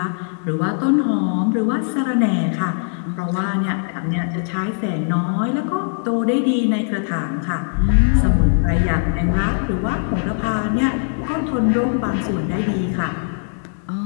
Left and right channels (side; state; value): right; silent; digital silence